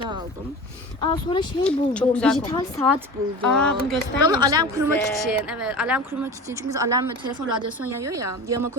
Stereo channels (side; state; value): both; normal; correlation 0.34